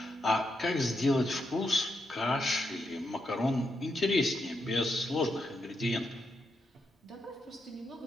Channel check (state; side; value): normal; both; correlation 0.83